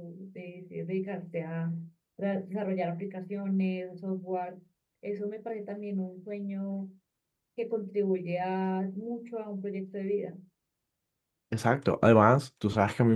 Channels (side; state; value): both; identical; correlation 1.00